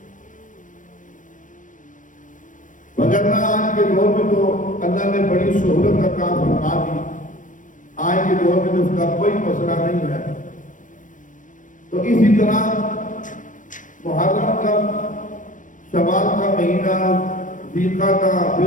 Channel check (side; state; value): right; late; 0.38 ms